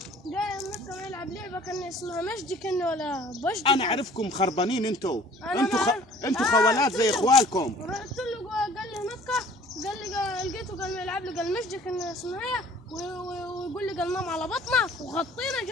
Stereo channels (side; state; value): both; normal; correlation 0.52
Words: جاي النقة يلعب لعبة كان اسمها مجدي كان ولا بجدي. انا اعرفكم خربانين انتوا خوالات زي اخوالكم. رحت له قال لي نقة. قال لي لقيته قال يلعب لي قال مجدي كان اسمها هي ويقول لي قال نام على بطنك وغطينا.